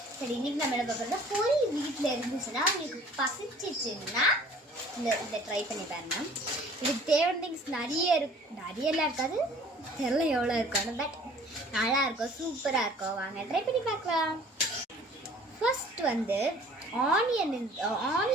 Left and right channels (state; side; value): normal; both; correlation 0.51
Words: சரி இன்னைக்கு நம்ம என்ன பார்க்குறதா பொரி வீட்டில் இருந்துச்சுன்னா உங்களுக்கு பசிச்சிச்சுன்னா இதை ட்ரை பண்ணி பாருங்க. இதுக்கு தேவையான திங்ஸ் நிறையலாம் இருக்காது, தெரியல எவ்வளோ இருக்கும், பட் நல்லா இருக்கும், சூப்பராக இருக்கும். வாங்க ட்ரை பண்ணி பார்க்கலாம். ஃபர்ஸ்ட் வந்து